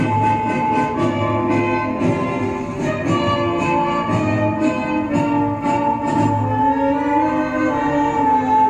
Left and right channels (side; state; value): both; identical; correlation 1.00